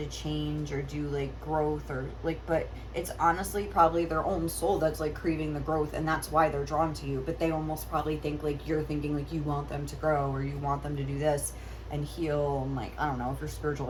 change or do like growth or like, but it's honestly probably their own soul that's like craving the growth, and that's why they're drawn to you. But they almost probably think like you're thinking like you want them to grow or you want them to do this and heal, and like I don't know if you're spiritual,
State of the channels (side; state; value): both; identical; correlation 1.00